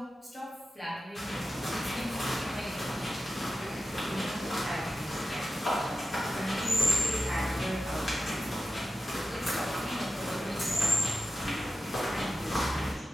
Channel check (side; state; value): both; normal; correlation 0.92